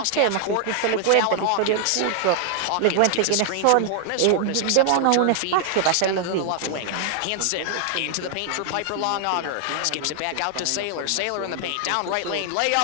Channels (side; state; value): both; different; correlation 0.00